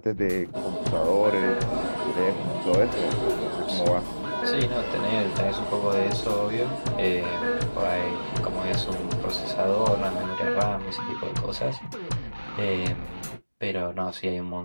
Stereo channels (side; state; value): both; inverted; correlation -1.00